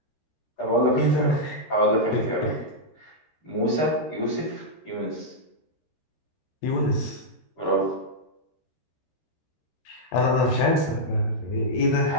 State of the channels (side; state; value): right; late; 13 ms